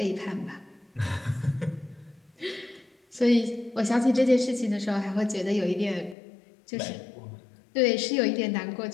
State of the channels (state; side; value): drops out; right; at 6.2 s